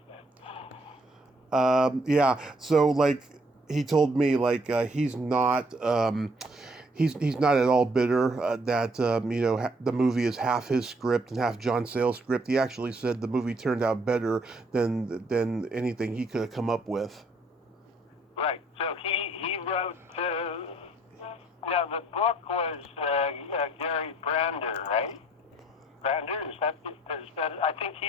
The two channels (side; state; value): both; normal; correlation 0.64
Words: Yeah. So he told me he's not. He's not at all bitter that the movie is half his script and half John Sayles' script. He actually said the movie turned out better than anything he could have come up with. Right. So he wrote. Now the book was Gary Brander, right? Brander, is that? I think